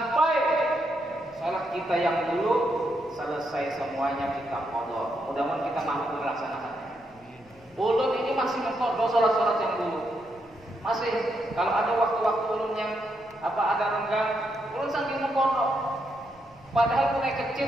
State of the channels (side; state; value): left; noise; rumble, 28 dB below the sound